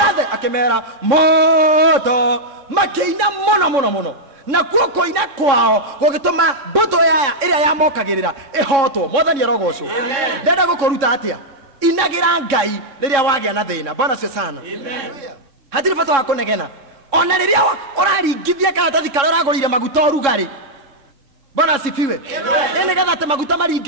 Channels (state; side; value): late; left; 3.6 ms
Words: akimera moto makiina muno na kuo koina kwao gugituma mbuto yaya iria yamokagirira ihotwo. Mwathani arogocwo. Ndenda gukuruta atia inagira Ngai riria wagia na thina. Bwana asifiwe sana. Hatiri bata wa kunegena ona riria uraringithia karatathi karia uragurire maguta urugari. Bwana asifiwe. Ene gatha te maguta